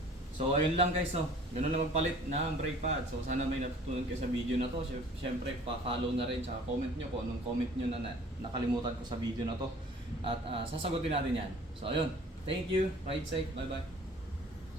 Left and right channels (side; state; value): both; normal; correlation 0.50